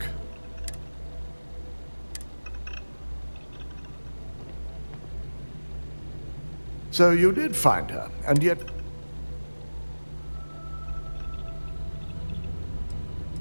So you did find her, and yet...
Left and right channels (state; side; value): inverted; both; correlation -1.00